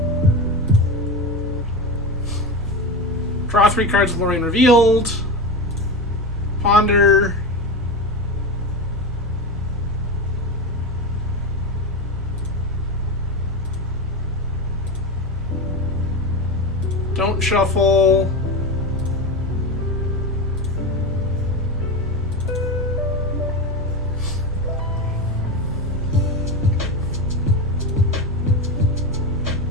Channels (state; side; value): normal; both; correlation 0.20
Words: Draw 3 cards with Lorien revealed. Ponder. Don't shuffle.